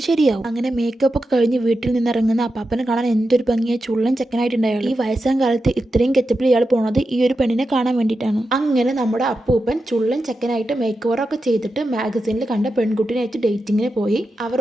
ശരിയാവും. അങ്ങനെ മേക്കപ്പ് ഒക്കെ കഴിഞ്ഞ് വീട്ടിൽ നിന്ന് ഇറങ്ങുന്ന അപ്പാപ്പനെ കാണാൻ എന്തൊരു ഭംഗിയായി ചുള്ളൻ ചെക്കനായിട്ടുണ്ടായാലും ഈ വയസ്സാം കാലത്ത് ഇത്രയും കെച്ചപ്പിൽ ഇയാൾ പോണത് ഈ ഒരു പെണ്ണിനെ കാണാൻ വേണ്ടിയിട്ടാണ്. അങ്ങനെ നമ്മുടെ അപ്പൂപ്പൻ ചുള്ളൻ ചെക്കനായിട്ട് മേക്ക് ഓവറൊക്കെ ചെയ്തിട്ട് മാഗസീനിൽ കണ്ട പെൺകുട്ടിനായിട്ട് ഡേറ്റിങ്ങിന് പോയി. അവർ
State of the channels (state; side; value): normal; both; correlation 0.89